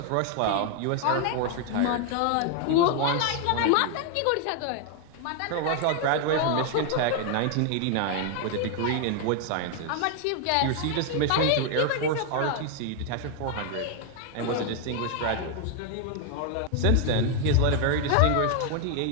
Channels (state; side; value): different; both; correlation 0.00